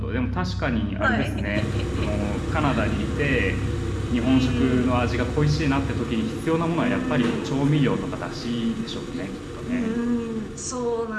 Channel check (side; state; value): both; identical; correlation 1.00